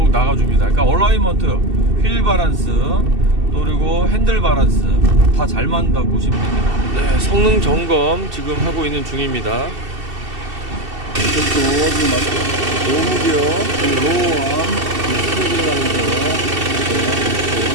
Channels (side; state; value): left; late; 2.7 ms